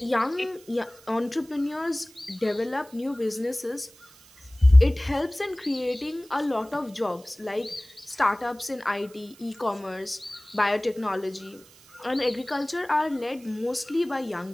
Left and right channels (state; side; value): noise; right; hiss, 24 dB below the sound